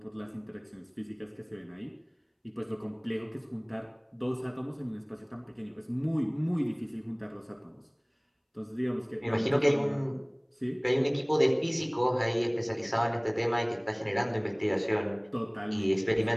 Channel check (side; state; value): both; identical; correlation 1.00